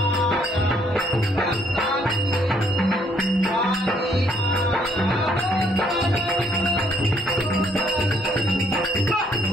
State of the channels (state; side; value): normal; both; correlation 0.68